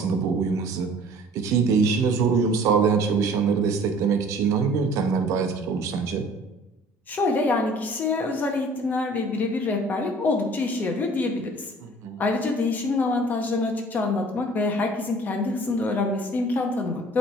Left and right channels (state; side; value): normal; both; correlation 0.50